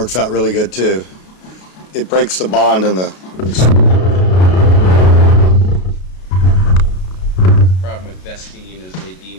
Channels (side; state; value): right; late; 33 ms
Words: out really good too. It breaks the bond in the... Problem with Vestine is they